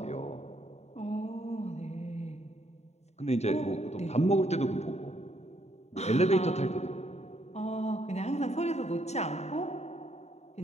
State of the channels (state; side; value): late; right; 0.32 ms